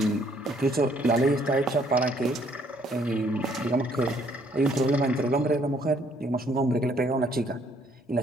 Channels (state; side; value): normal; both; correlation 0.65